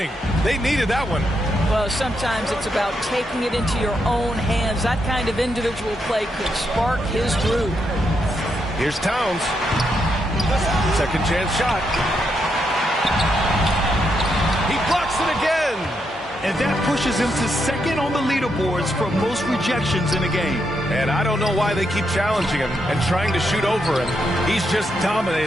They needed that one. Well, sometimes it's about taking it into your own hands. That kind of individual play could spark his groove. Here's Towns. Second chance shot. He blocks it again. And that pushes him to second on the leaderboards for most rejections in a game. And I don't know why they keep challenging him and trying to shoot over him. He's just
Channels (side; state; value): both; normal; correlation 0.80